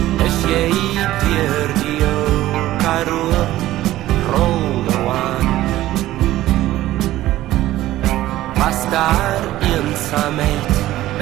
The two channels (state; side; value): quieter; left; 15.2 dB